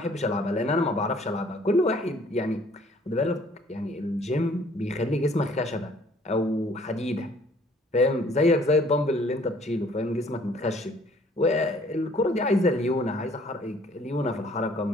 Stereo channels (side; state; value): both; normal; correlation 0.58